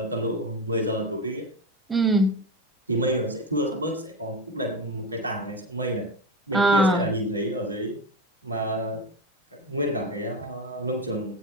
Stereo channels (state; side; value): normal; both; correlation 0.18